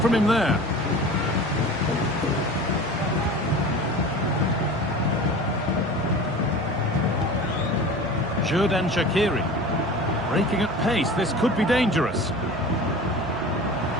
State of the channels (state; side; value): normal; both; correlation 0.37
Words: from him there. Xherdan Shaqiri. Breaking at pace, this could be dangerous.